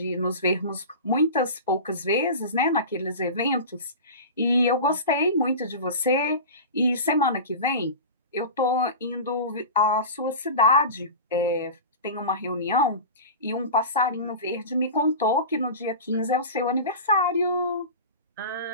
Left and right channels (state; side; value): inverted; both; correlation -0.31